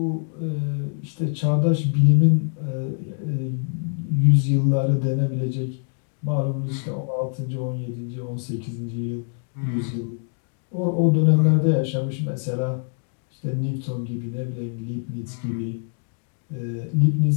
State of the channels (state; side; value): silent; right; 55 dB below the other